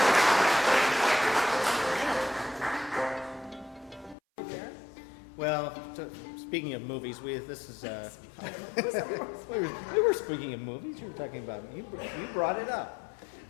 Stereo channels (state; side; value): drops out; right; at 4.2 s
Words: speaking of movies, this is we were speaking of movies. You were talking about you brought it up.